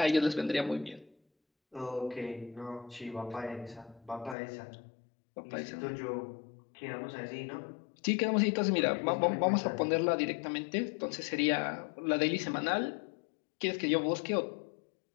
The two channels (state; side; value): drops out; right; at 4.4 s